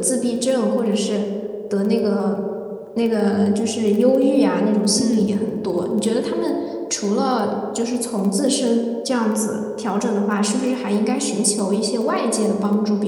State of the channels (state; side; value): identical; both; correlation 1.00